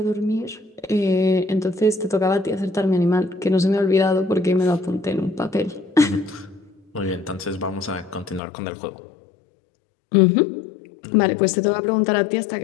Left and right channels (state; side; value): drops out; right; at 8.4 s